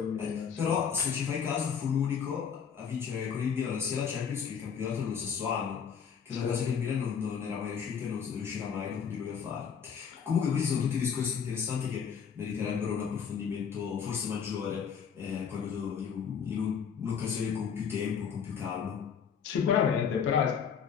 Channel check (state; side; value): quieter; right; 7.0 dB